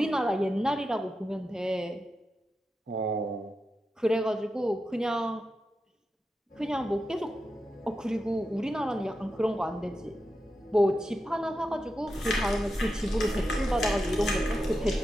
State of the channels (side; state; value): both; normal; correlation 0.89